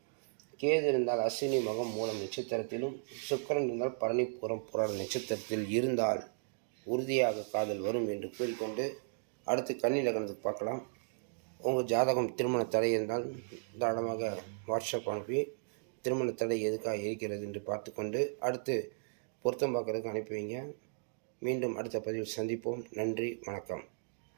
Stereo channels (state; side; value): silent; left; digital silence